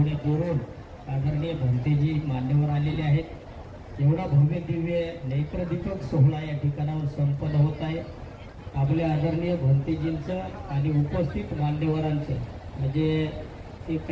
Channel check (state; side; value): identical; both; correlation 1.00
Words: दुरून आदरणीय भंतेजी मान्यवर आलेले आहेत। एवढा भव्य दिव्य नेत्रदीपक सोहळा या ठिकाणावर संपन्न होत आहे। आपल्या आदरणीय भंतेजींचं आणि उपस्थित मान्यवरांचं म्हणजे ते